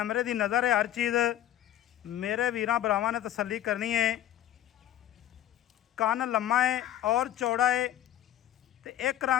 की नज़र है हर चीज़। मेरे वीरां भरावां ने तसल्ली करनी है। कन लम्मा है और चौड़ा है ते एक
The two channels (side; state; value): right; quieter; 12.2 dB